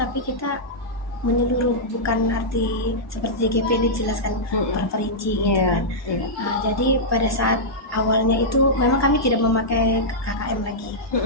kita menyeluruh, bukan arti seperti JGP dijelaskan terperinci gitu kan. Jadi pada saat awalnya itu memang kami tidak memakai KKM lagi.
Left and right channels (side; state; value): both; normal; correlation -0.10